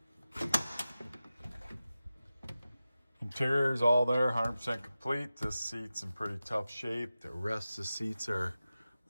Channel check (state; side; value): inverted; both; correlation -0.94